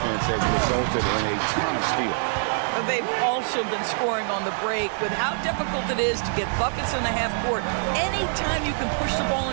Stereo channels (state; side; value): silent; left; 62 dB below the other